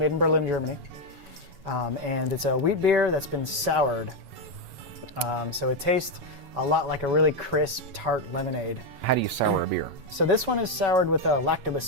in Berlin, Germany. And it's a wheat beer that's been soured. So it tastes a lot like a really crisp, tart lemonade. How do you sour a beer? So this one is soured with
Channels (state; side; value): late; left; 7.1 ms